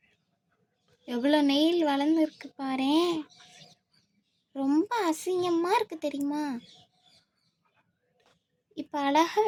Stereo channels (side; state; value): both; identical; correlation 1.00